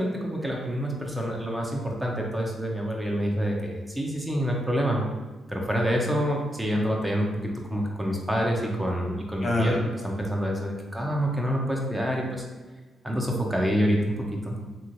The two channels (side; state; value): both; normal; correlation 0.83